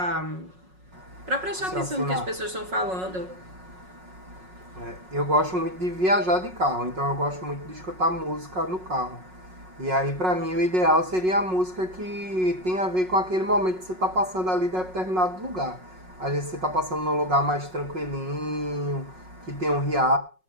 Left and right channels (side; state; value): left; late; 5.4 ms